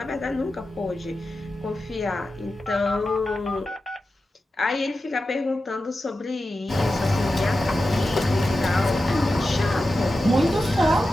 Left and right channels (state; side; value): normal; both; correlation 0.92